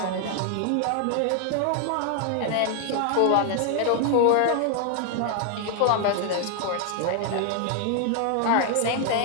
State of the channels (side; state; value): both; different; correlation 0.00